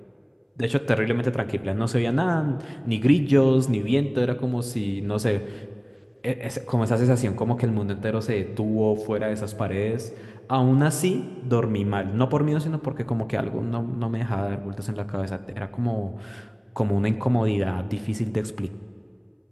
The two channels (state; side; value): identical; both; correlation 1.00